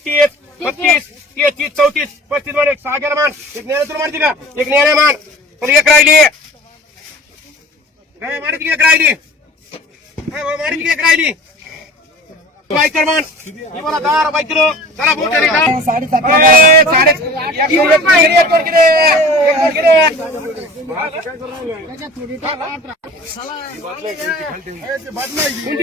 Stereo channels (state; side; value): normal; both; correlation 0.42